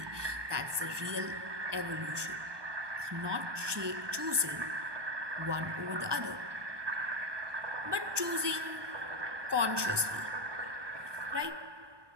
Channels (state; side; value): late; left; 1.2 ms